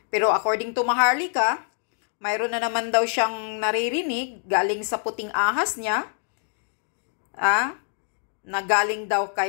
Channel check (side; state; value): right; silent; 61 dB below the other